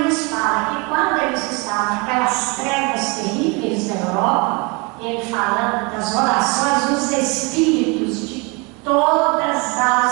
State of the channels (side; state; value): left; quieter; 29.5 dB